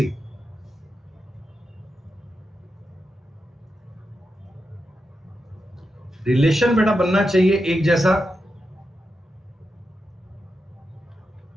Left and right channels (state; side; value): normal; both; correlation 0.88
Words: रिलेशन बेटा बनना चाहिए एक जैसा।